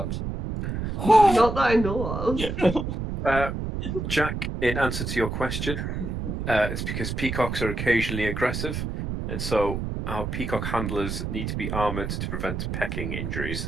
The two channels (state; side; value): noise; right; rumble, 4 dB below the sound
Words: Not that I know of. Jack, in answer to your question, it's because peacocks are occasionally aggressive, and so our peacock handlers need to be armoured to prevent pecking